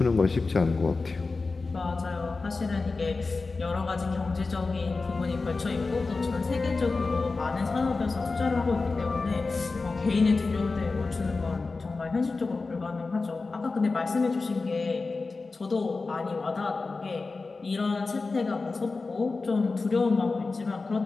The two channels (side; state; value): right; quieter; 3.9 dB